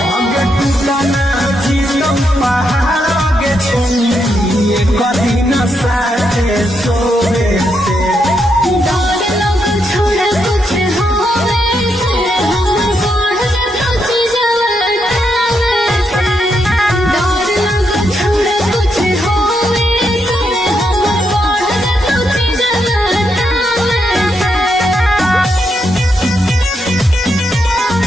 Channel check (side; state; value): both; normal; correlation 0.80